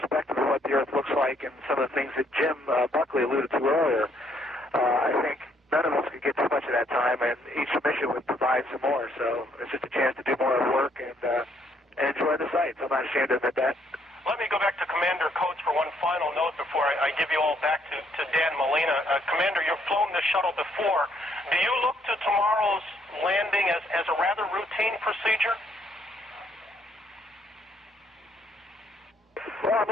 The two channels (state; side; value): normal; both; correlation 0.69